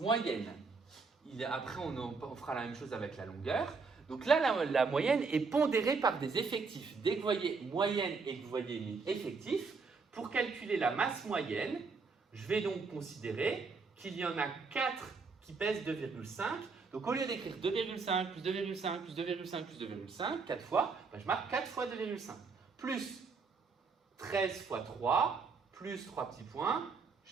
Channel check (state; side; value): quieter; left; 4.7 dB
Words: Après, on fera la même chose avec la longueur. Donc là, la moyenne est pondérée par des effectifs. Dès que vous voyez moyenne et que vous voyez effectif, pour calculer la masse moyenne, je vais donc considérer qu'il y en a 4 qui pèsent 2,5. Donc au lieu d'écrire 2,5 plus 2,5 plus 2,5 plus 2,5, 4 fois, je marque 4 fois 2,5. Plus 13 fois 3, plus 3 petits points.